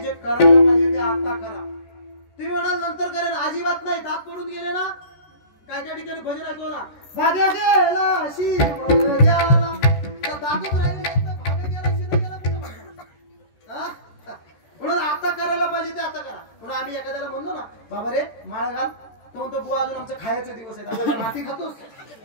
जे करायला पाहिजे ते आता करा. तुम्ही म्हणाल नंतर करेन, अजिबात नाही. दात पडून गेले ना काय त्या ठिकाणी भजन ऐकतो ना भाग्या गेला शिव गेला दातच राहिले भाग्या गेला शिव गेला कुठं म्हणणार. म्हणून आता करायला पाहिजे ते आता करा. म्हणून आम्ही एखाद्याला म्हणलो ना बाबा रे माळ घाल तो म्हणतो बुवा अजून आमचे खायचे दिवस आहेत आपण माती खातोस.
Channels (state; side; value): late; right; 14 ms